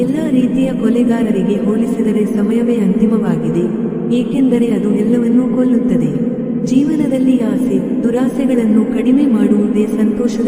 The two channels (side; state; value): both; identical; correlation 1.00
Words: ಎಲ್ಲ ರೀತಿಯ ಕೊಲೆಗಾರರಿಗೆ ಹೋಲಿಸಿದರೆ ಸಮಯವೇ ಅಂತಿಮವಾಗಿದೆ, ಏಕೆಂದರೆ ಅದು ಎಲ್ಲವನ್ನೂ ಕೊಲ್ಲುತ್ತದೆ. ಜೀವನದಲ್ಲಿ ಆಸೆ, ದುರಾಸೆಗಳನ್ನು ಕಡಿಮೆ ಮಾಡುವುದೇ